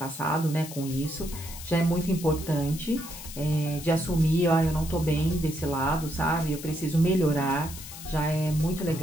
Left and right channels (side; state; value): left; noise; hiss, 13 dB below the sound